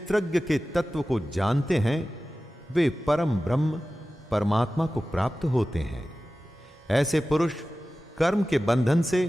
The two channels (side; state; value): both; normal; correlation 0.96